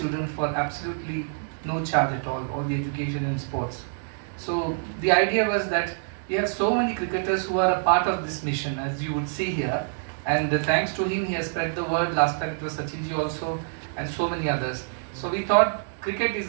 for absolutely no charge at all the education and sports. So the idea was that we have so many cricketers who are a part of this mission, as you would see here. And thanks to him, he has spread the word. Last time it was Sachinji also, and so many others. So we thought cricket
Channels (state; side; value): silent; left; digital silence